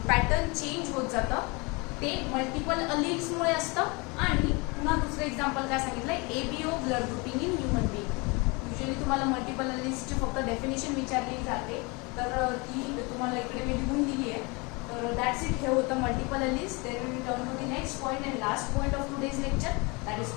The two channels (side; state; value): right; quieter; 28.1 dB